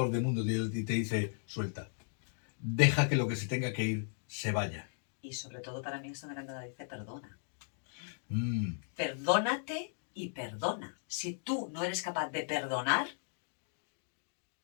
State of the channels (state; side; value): silent; right; digital silence